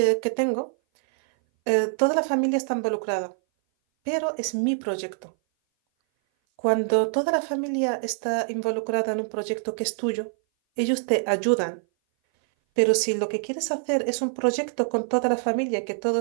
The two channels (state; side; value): silent; left; 58 dB below the other